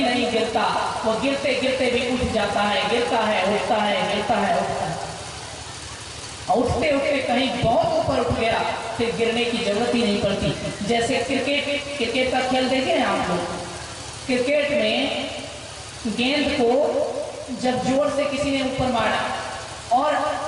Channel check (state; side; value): identical; both; correlation 1.00